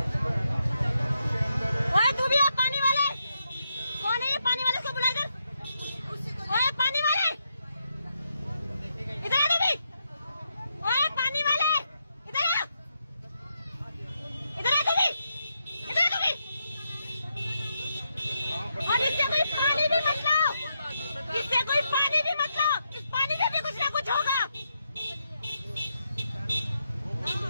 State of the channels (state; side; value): inverted; both; correlation -0.82